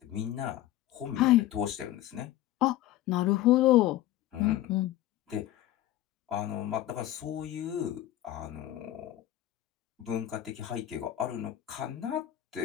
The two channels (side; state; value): right; quieter; 13.9 dB